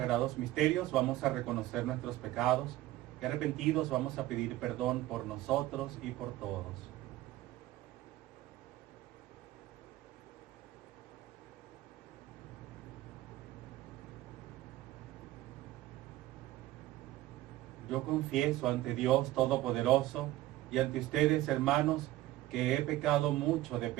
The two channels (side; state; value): left; quieter; 16.0 dB